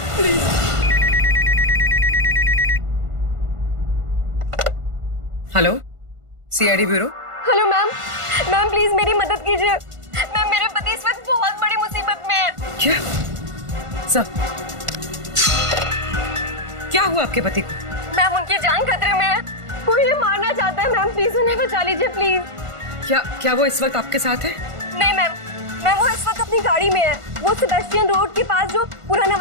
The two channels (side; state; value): left; late; 1.5 ms